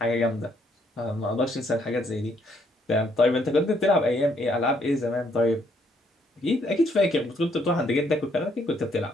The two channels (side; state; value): both; normal; correlation 0.70